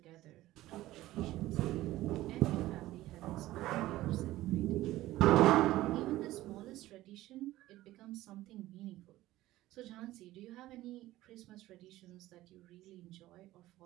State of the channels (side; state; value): left; quieter; 16.2 dB